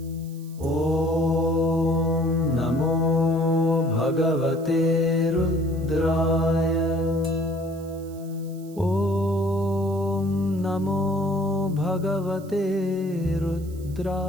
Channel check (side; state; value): right; noise; hiss, 24 dB below the sound